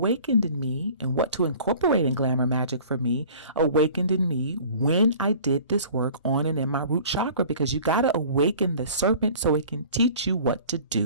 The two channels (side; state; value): both; inverted; correlation -0.47